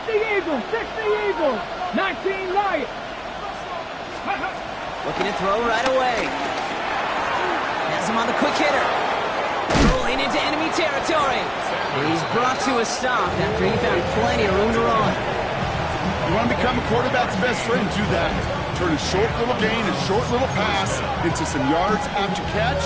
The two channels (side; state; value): both; identical; correlation 1.00